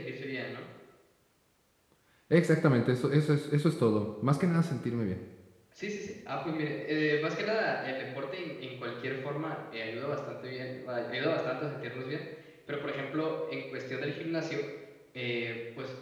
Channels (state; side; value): identical; both; correlation 1.00